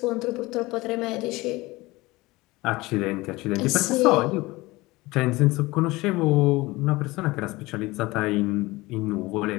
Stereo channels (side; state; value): right; quieter; 21.0 dB